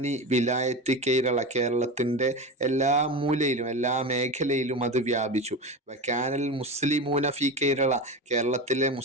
വിലായത്ത് കേരള, കേരളത്തിൻ്റെ എല്ലാ മൂലയിലും എല്ലാ മേഖലയിലും അത് വ്യാപിച്ചു. വകാനൽ മുസ്ലിമൂന ഫി കേരള, കേരളത്തിലെ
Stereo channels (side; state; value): both; normal; correlation 0.25